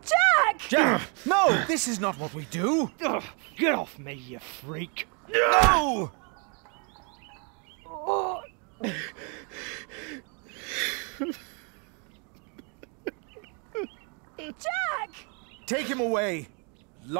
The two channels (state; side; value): quieter; left; 36.2 dB